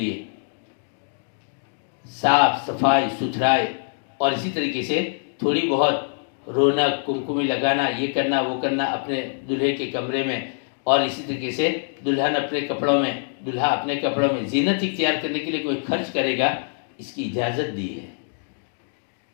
صاف صفائی ستھرائی اور اسی طریقے سے تھوڑی بہت رونق، کمکمی لگانا، یہ کرنا وہ کرنا اپنے دلہے کے کمرے میں، اور اسی طریقے سے دلہن اپنے کپڑوں میں، دلہا اپنے کپڑوں میں زینت اختیار کرنے کے لیے کوئی خرچ کرے گا، اس کی اجازت دی ہے.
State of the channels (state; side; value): silent; right; digital silence